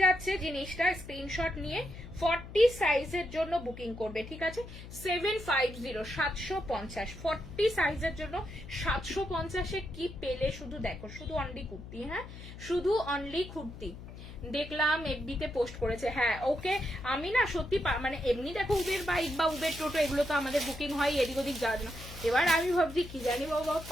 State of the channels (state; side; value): noise; left; hum, 13 dB below the sound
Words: যাচ্ছে জিনিসটা, স্ক্রিনশট নিয়ে 40 সাইজের জন্য বুকিং করবে, ঠিক আছে? 750 750 40 সাইজের জন্য 750 কি পেলে শুধু দেখো, শুধু অনলি কুর্তি, হ্যাঁ শুধু অনলি কুর্তি। দেখলাম এফবিতে পোস্ট করেছে, হ্যাঁ ওকে। আমি না সত্যি মানে এমনি দেখো উবের বাইক বা উবের টোটো এগুলো তো আমাদের বুকিং হয়, এদিক ওদিক যাওয়ার জন্য। এবার আমি ভাবছি কি জানি বাবা